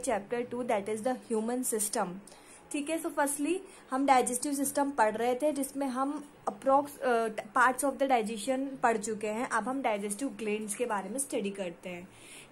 2, that is the human system. ठीक है. So firstly हम digestive system पढ़ रहे थे जिसमें हम approx parts of the digestion पढ़ चुके हैं. अब हम डाइजेस्टिव ग्लैंड्स के बारे में स्टडी करते हैं.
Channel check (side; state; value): both; identical; correlation 1.00